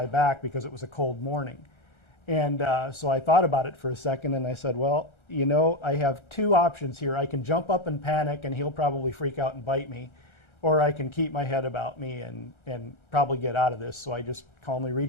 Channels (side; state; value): right; late; 1.3 ms